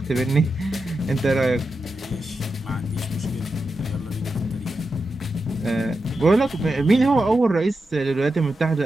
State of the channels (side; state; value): both; normal; correlation 0.89